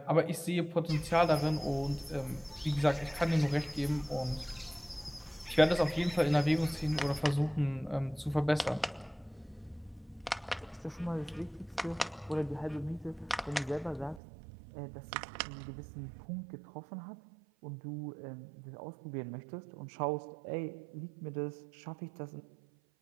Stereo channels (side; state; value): left; drops out; at 14.2 s